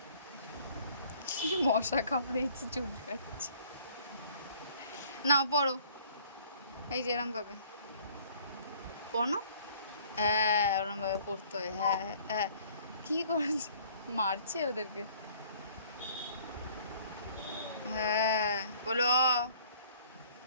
কি মশা কামড়েছে, চুল কাটছে। নাও পড়ো, এই যে এরম ভাবে পড়ো। হ্যাঁ ওরম ভাবে পড়তে হয়, হ্যাঁ হ্যাঁ। কি করেছে, মারছে ওদেরকে। হ্যাঁ বলো।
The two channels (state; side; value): inverted; both; correlation -0.56